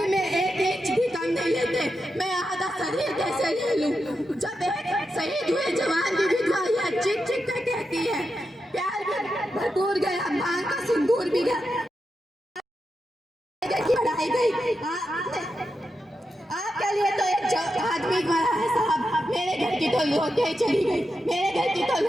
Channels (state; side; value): normal; both; correlation 0.87